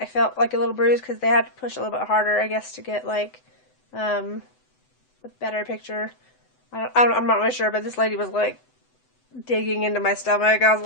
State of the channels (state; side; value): late; right; 7.9 ms